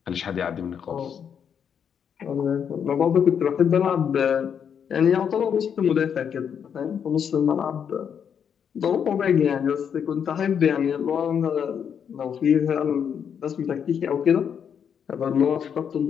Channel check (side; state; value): right; quieter; 7.8 dB